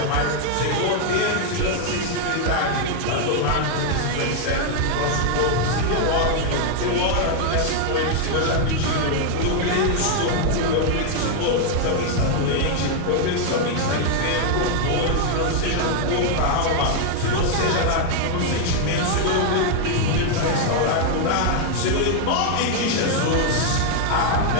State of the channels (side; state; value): both; different; correlation 0.00